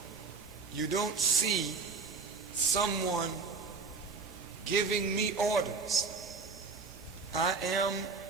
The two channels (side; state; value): left; quieter; 4.6 dB